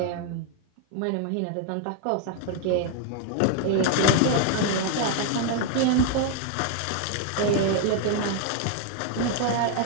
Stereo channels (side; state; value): both; different; correlation 0.00